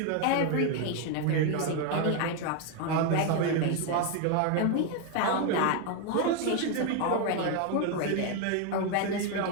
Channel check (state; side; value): different; both; correlation 0.01